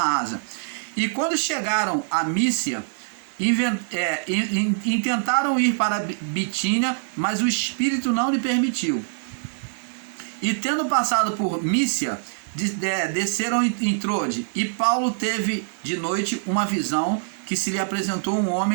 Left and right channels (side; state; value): left; silent; 60 dB below the other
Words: Ásia. E quando chegaram a Mísia, intentaram ir para Bitínia, mas o Espírito não lhe permitiu. E tendo passado por Mísia, desceram em Trode, e Paulo teve de noite uma visão, que se lhe apresentou um